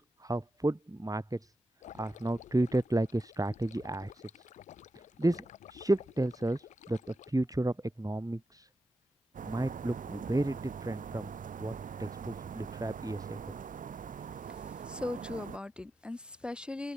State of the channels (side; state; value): both; normal; correlation 0.90